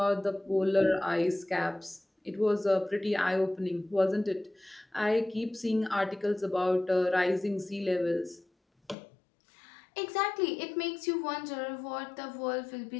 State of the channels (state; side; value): drops out; right; at 9.0 s